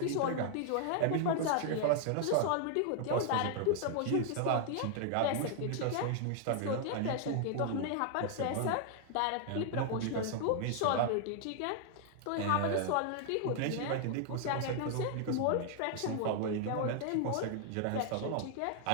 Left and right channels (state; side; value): different; both; correlation 0.00